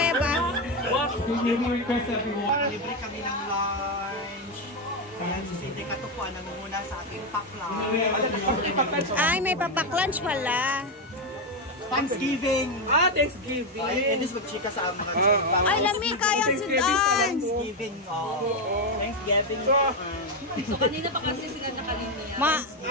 Libre kami ng lunch. Ayan, si Cindy Katupuan nangunguna sa ating pack-lunch. Ay, may papak-lunch pala. Thanksgiving! Thanksgiving! Ay, Enis magchika sa mga Ay, lami kayang sudan. Thanksgiving, Thanksgiving. So, kanina pa kasi sila nakalino yan.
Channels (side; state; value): both; normal; correlation 0.08